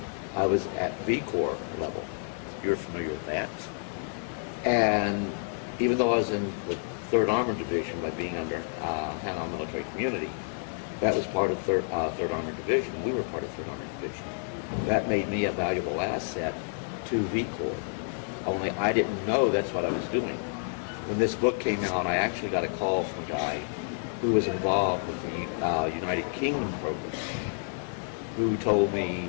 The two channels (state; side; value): silent; right; 58 dB below the other